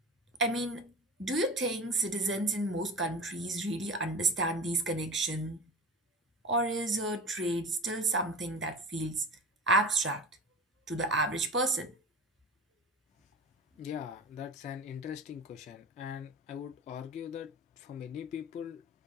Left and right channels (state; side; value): normal; both; correlation 0.33